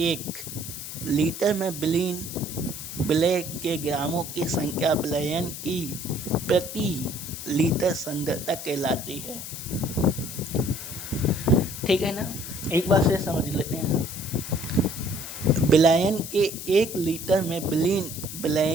1 लीटर में विलय के ग्रामों की संख्या बिलियन की प्रति लीटर सांद्रता कहलाती है। ठीक है ना, एक बार से समझ लेते हैं। बिलियन के 1 लीटर में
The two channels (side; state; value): left; noise; hiss, 9 dB below the sound